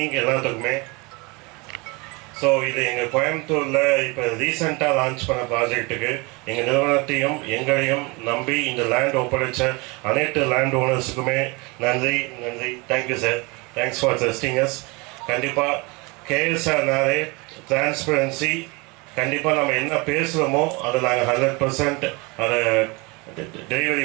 எல்லாத்துக்குமே. ஸோ ஸோ இது எங்கள் கோயம்புத்தூரில் இப்போ ரீசெண்டாக லான்ச் பண்ண ப்ராஜெக்ட்டுக்கு எங்கள் நிறுவனத்தையும் எங்களையும் நம்பி இந்த லேண்ட் ஒப்படைச்ச அனைத்து லேண்ட் ஓனர்ஸுக்குமே நன்றி. Thank you sir. Thanks for trusting as. கண்டிப்பாக கேஎஸ்ஆர்னாலே டிரான்ஸ்பரன்சி. கண்டிப்பாக நம்ம என்ன பேசுகிறோமோ அதை நாங்கள் 100% அதை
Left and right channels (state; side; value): quieter; left; 27.2 dB